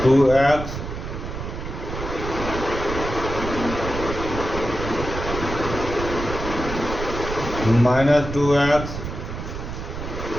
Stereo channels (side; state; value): right; noise; rumble, 7 dB below the sound